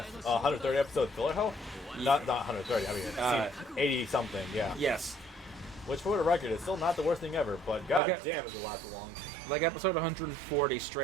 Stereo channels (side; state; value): left; drops out; at 8.0 s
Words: 130 episode filler hell? Not 130, I mean, 80 something, yeah. Yes. Which, for the record, is still not the worst thing ever, but god damn, is it last long. Like episode 140,